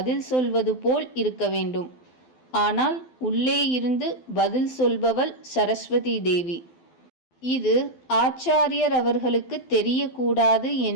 சொல்வது போல் இருக்க வேண்டும். ஆனால் உள்ளே இருந்து பதில் சொல்பவள் சரஸ்வதி தேவி. இது ஆச்சாரியர் அவர்களுக்கு தெரியக்கூடாது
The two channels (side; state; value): right; late; 12 ms